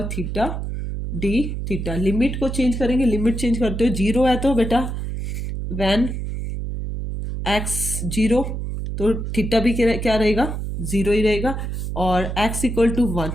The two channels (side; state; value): right; noise; hum, 4 dB below the sound